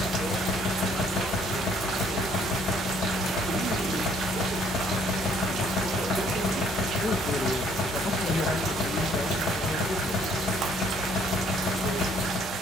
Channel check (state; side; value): normal; both; correlation 0.63